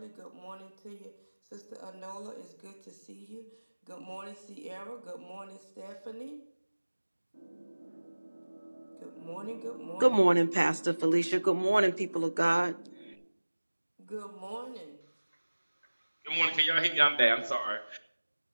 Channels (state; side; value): inverted; both; correlation -1.00